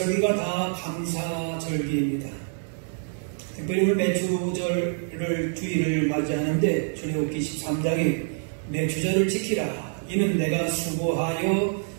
다 감사절기입니다. 특별히 오늘 맥주절을 주일을 맞이하는데 출애굽기 13장에 맥주절을 지키라. 이는 내가 수고하여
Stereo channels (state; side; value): silent; left; digital silence